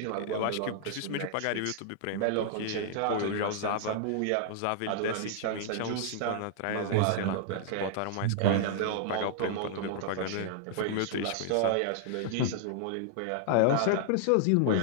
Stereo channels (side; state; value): both; different; correlation -0.01